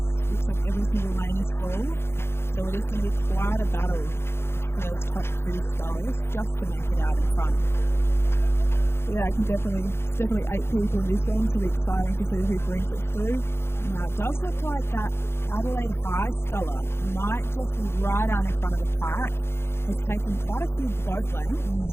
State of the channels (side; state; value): right; late; 0.12 ms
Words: like every single lane is full. So it is going to be quite a battle for those top 2 scullers just to make it out in front. Yeah, it's definitely 8 people in this one, so it'll be exciting to see who brings it through. Now, it does look like that Adelaide High sculler might just be right out in front of the pack. Has taken quite a few boat